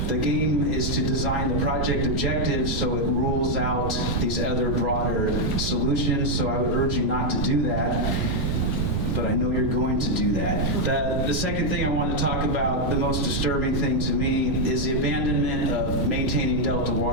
the game is to design the project objectives so it rules out these other broader solutions. So I would urge you not to do that, but I know you're going to do that. The second thing I want to talk about, the most disturbing thing to me, is the abandonment of maintaining Delta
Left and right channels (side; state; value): right; noise; rumble, 1 dB below the sound